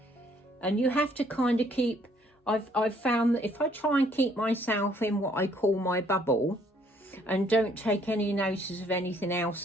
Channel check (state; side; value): normal; both; correlation 0.64